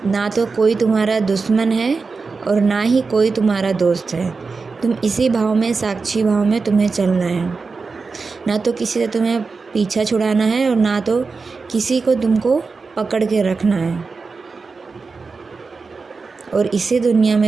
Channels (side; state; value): left; quieter; 4.5 dB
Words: ना तो कोई तुम्हारा दुश्मन है और ना ही कोई तुम्हारा दोस्त है। तुम इसी भाव में, साक्षी भाव में तुम्हें चलना है। ना तो किसी से तुम्हें पीछा छुड़ाना है और ना तो किसी को तुमको पकड़ के रखना है। और इसी दुनिया